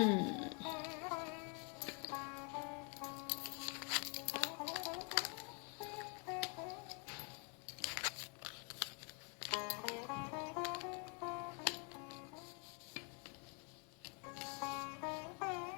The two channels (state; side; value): quieter; right; 35.8 dB